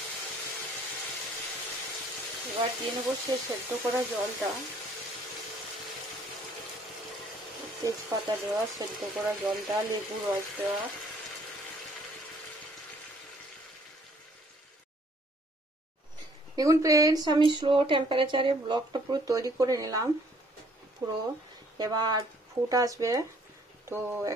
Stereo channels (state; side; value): normal; both; correlation 0.61